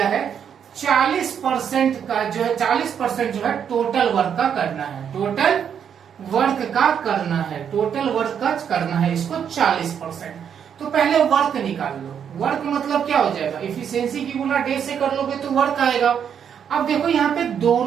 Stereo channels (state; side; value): quieter; left; 8.1 dB